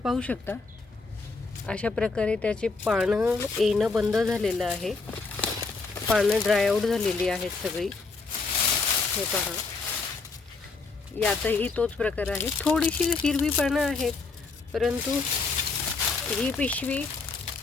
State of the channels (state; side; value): quieter; right; 4.2 dB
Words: शकता अशा प्रकारे त्याचे पानं येणं बंद झालेलं आहे. पानं ड्राय आऊट झालेली आहेत सगळी. हे पहा, यातही तोच प्रकार आहे. थोडीशी हिरवी पानं आहेत, परंतु ही पिशवी,